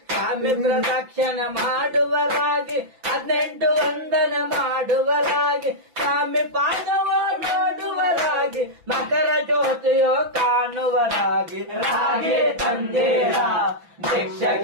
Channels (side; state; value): left; late; 6.0 ms